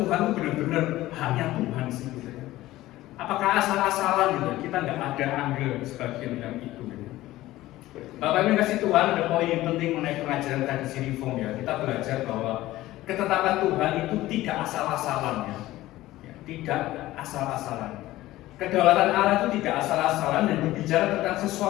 itu benar-benar hanya Tuhan sih gitu ya? Apakah asal-asalan gitu? Kita nggak ada andil sebagian dalam itu gitu. Bapak Ibu kasih Tuhan, ada poin yang penting mengenai pengajaran tradisi Reform ya. Kita belajar bahwa ketetapan Tuhan itu tidak asal-asalan ya. tidak asal-asalan. Kedaulatan Allah itu tidak asal-asalan dan berbicara tentang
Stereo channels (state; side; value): quieter; right; 16.4 dB